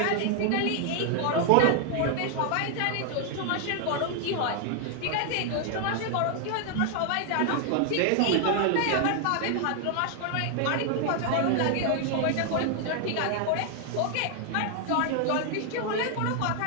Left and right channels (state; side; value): different; both; correlation 0.00